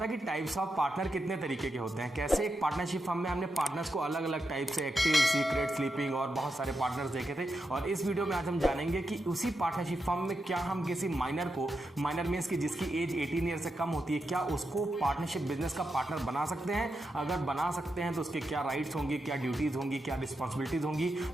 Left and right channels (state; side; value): normal; both; correlation 0.86